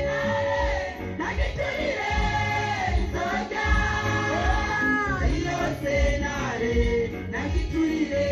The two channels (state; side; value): identical; both; correlation 1.00